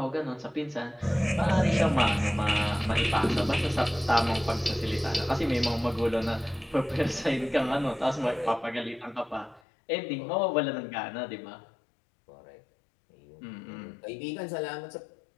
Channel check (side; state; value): right; drops out; at 9.6 s